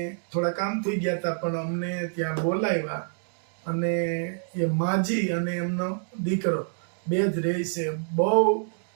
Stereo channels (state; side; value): silent; left; digital silence